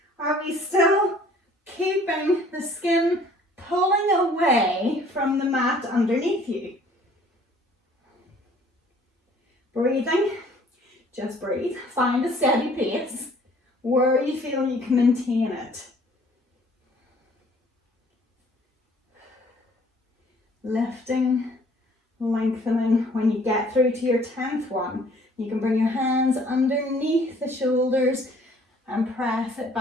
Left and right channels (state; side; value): normal; both; correlation 0.56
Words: are we still keeping the skin pulling away from the mat underneath you? Breathing, just breathe. Find a steady pace where you feel you can maintain it. Lifting, lengthening. When you get through to your 10th one, you can bring your hands underneath the shoulders and press it